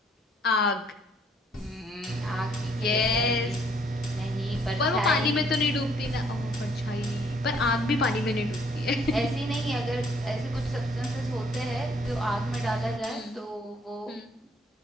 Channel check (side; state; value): both; normal; correlation 0.64